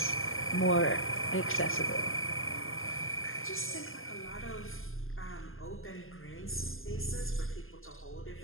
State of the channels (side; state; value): right; late; 0.60 ms